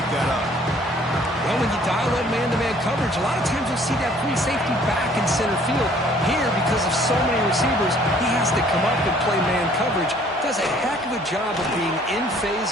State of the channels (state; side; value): normal; both; correlation 0.58